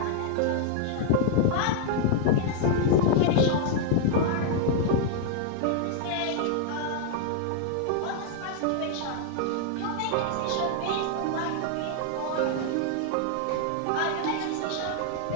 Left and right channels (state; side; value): different; both; correlation 0.00